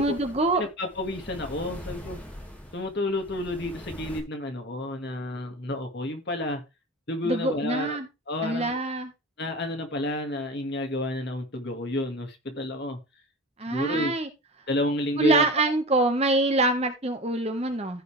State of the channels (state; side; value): normal; both; correlation 0.32